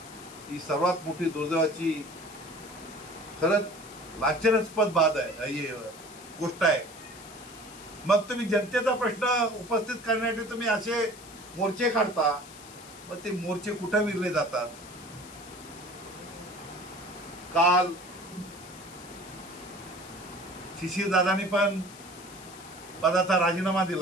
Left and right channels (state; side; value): noise; left; hiss, 18 dB below the sound